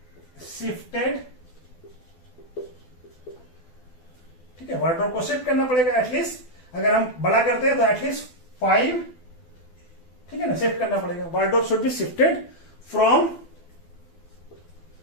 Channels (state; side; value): late; right; 12 ms